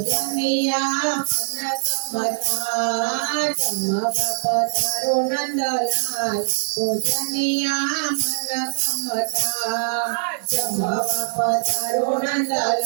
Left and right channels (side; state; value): left; silent; digital silence